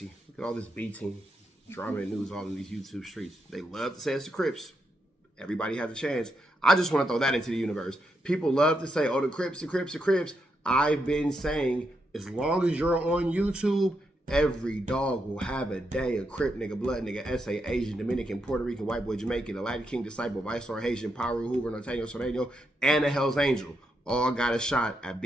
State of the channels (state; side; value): normal; both; correlation 0.82